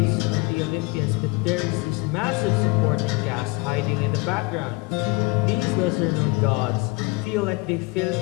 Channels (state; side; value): quieter; right; 25.1 dB